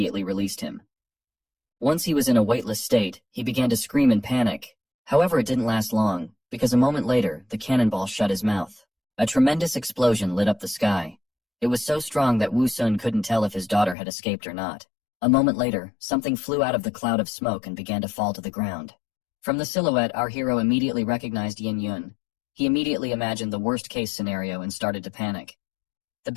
released him. Once he was in a weightless state, he began to scream in panic. However, it didn't last long, because a moment later, the cannonball shut his mouth. A tremendous explosion lit up the sky. It was so strong that Wu Sun couldn't tell if his daughter had escaped or not. A moment later, something flew out of the cloud of smoke and began to fall to the ground. From the silhouette, our hero immediately recognized Yin Yun. He immediately imagined the worst-case scenario and started to panic. The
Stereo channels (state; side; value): drops out; right; at 14.0 s